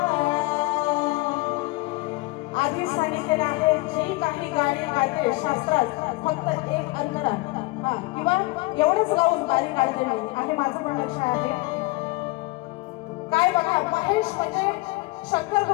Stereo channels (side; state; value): right; quieter; 22.5 dB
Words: आधी सांगितलेलं आहे जी काही गाणी गाते शास्त्रात फक्त एक अंतरा किंवा एवढंच गाऊन गाणी काढते मी आहे, माझं पण लक्ष आहे। काय बघा, महेश म्हणजे शंकर